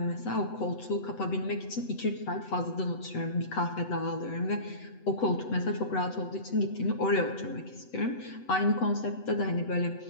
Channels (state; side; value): late; right; 8.0 ms